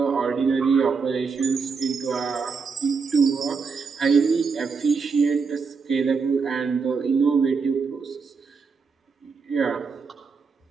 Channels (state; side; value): quieter; left; 5.2 dB